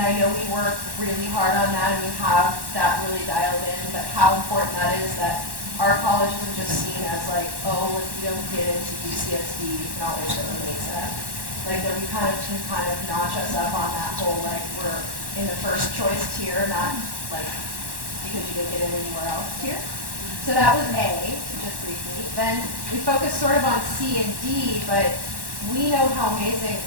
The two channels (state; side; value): late; left; 1.1 ms